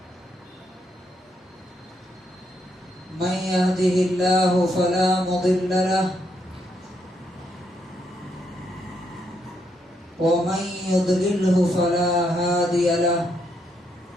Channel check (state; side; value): normal; both; correlation 0.77